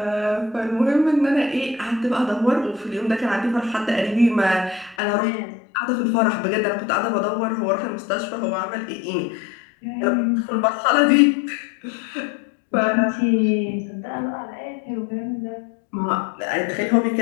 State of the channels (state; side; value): drops out; right; at 5.0 s